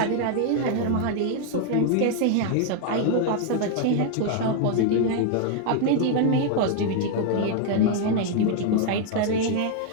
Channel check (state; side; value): different; both; correlation 0.00